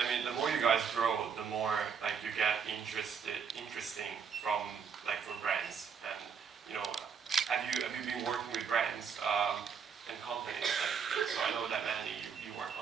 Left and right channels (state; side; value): quieter; left; 6.5 dB